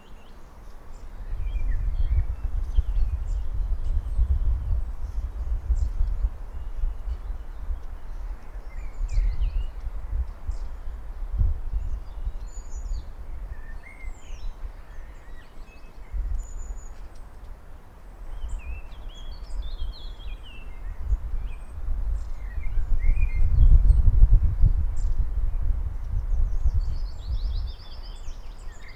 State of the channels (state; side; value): identical; both; correlation 1.00